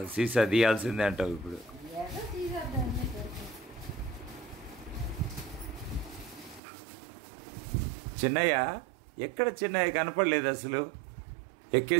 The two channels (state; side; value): drops out; left; at 6.6 s